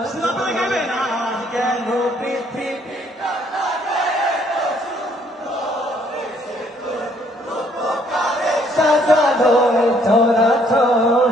কেন পৃথিবী সাজালো এ চরা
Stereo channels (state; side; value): normal; both; correlation 0.65